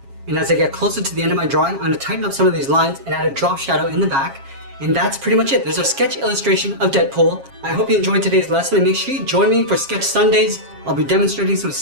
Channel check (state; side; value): late; left; 7.4 ms